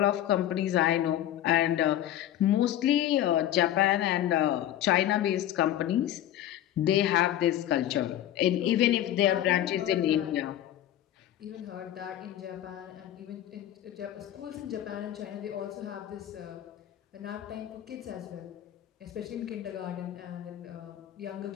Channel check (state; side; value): quieter; right; 12.2 dB